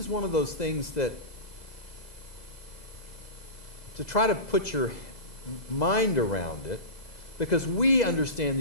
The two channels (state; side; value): late; right; 2.0 ms